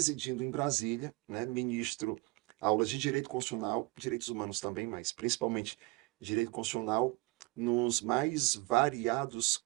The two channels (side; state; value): left; quieter; 24.5 dB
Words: em Brasília, né, ministro aulas de direito constitucional, direitos humanos também, mas principalmente direito constitucional, nos mais variados